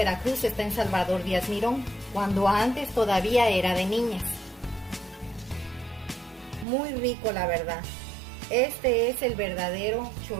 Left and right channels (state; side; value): drops out; left; at 6.7 s